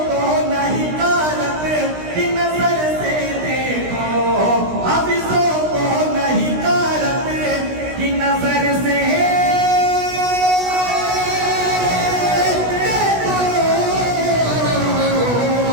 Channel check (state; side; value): late; left; 16 ms